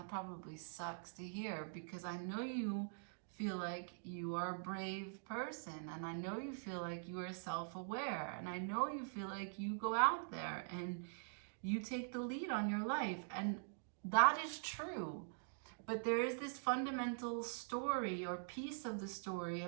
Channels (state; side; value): silent; left; digital silence